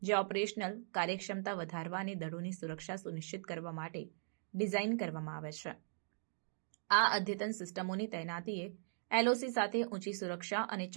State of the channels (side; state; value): left; silent; digital silence